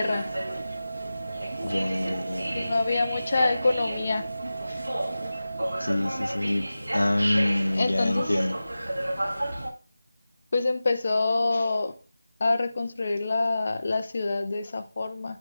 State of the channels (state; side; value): inverted; both; correlation -0.96